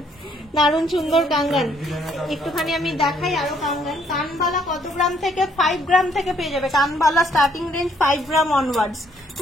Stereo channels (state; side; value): normal; both; correlation 0.67